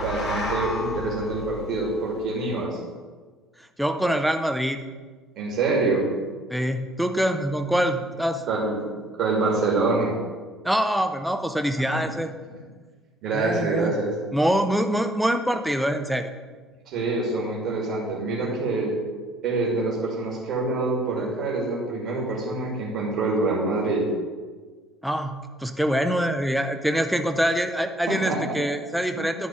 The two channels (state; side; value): normal; both; correlation 0.61